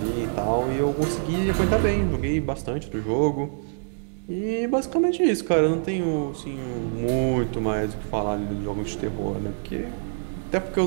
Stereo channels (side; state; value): left; silent; digital silence